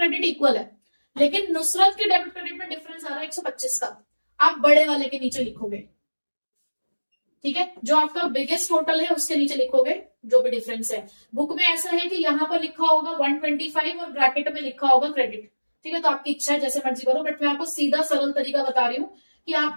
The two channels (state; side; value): inverted; both; correlation -1.00